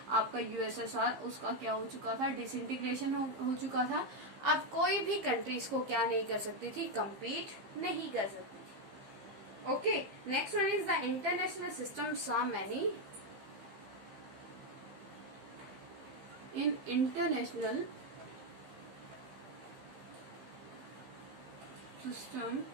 आपका यूएसएसआर, उसका क्या हो चुका था, डिसइंटीग्रेशन हो चुका था. अब कोई भी कंट्रीज को क्या नहीं कर सकती थी, compete नहीं कर सकती. Okay, next one is the international system saw many. In international system,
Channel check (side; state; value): left; late; 15 ms